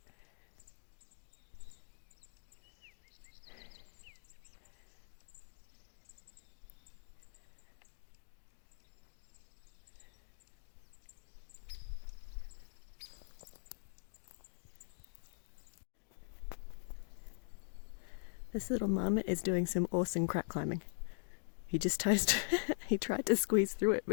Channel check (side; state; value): right; silent; digital silence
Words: This little marmot is doing some awesome crack climbing. He just he tried to squeeze through it